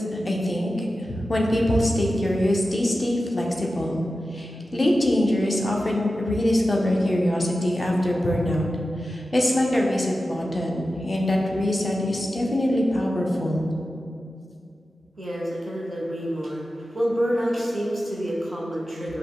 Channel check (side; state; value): both; normal; correlation 0.93